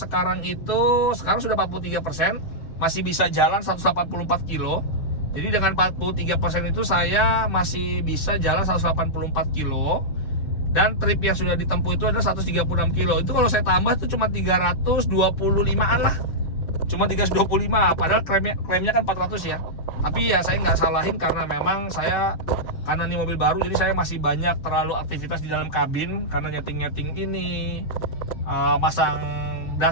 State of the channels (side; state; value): right; late; 6.6 ms